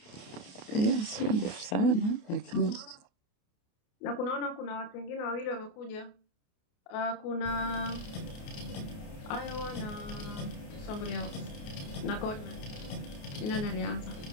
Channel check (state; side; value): late; right; 28 ms